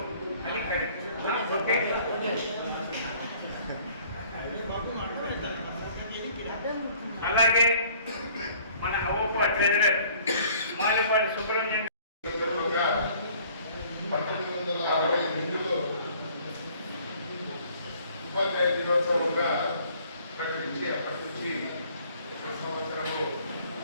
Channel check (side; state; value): both; inverted; correlation -0.56